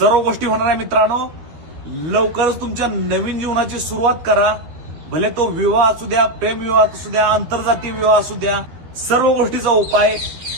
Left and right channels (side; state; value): left; late; 12 ms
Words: गोष्टी होणार आहे मित्रांनो. लवकरच तुमच्या नवीन जीवनाची सुरुवात करा. भले तो विवाह असू द्या, प्रेमविवाह असू द्या, आंतरजातीय विवाह असू द्या, सर्व गोष्टीचा उपाय